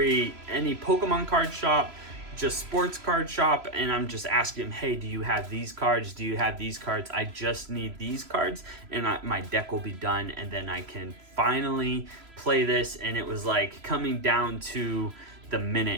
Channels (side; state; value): left; late; 3.0 ms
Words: Pokemon card shop, just sports card shop, and I'm just asking them, hey, do you have these cards? Do you have these cards? I just need these cards, and my deck will be done, and then I can finally play this. And it was like coming down to the